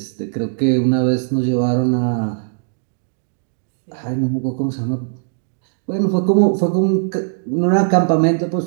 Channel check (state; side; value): silent; left; digital silence